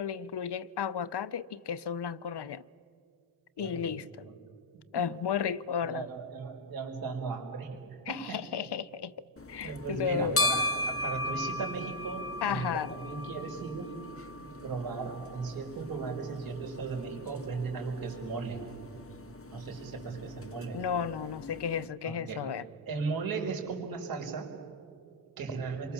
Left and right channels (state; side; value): normal; both; correlation 0.04